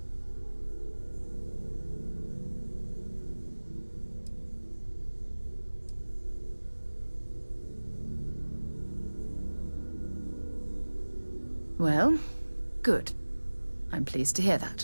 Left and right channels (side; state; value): both; inverted; correlation -1.00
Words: Well, good. I'm pleased to hear